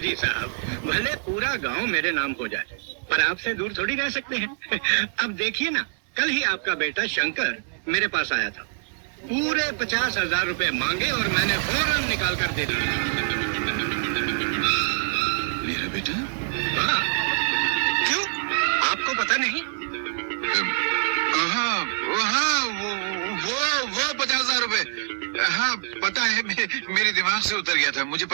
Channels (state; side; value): silent; left; digital silence